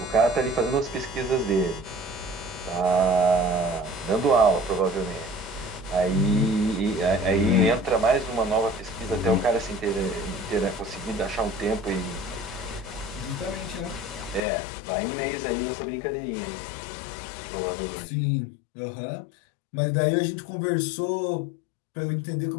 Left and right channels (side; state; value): right; drops out; at 14.4 s